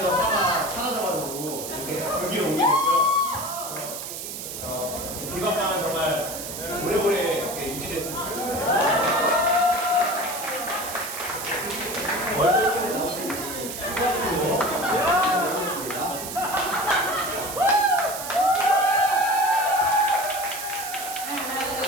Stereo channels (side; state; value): right; noise; hiss, 8 dB below the sound